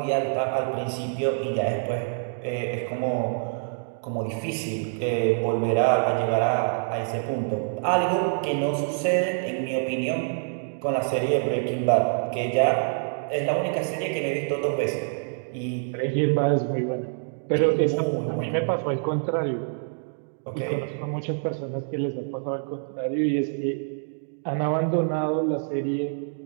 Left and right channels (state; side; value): silent; left; digital silence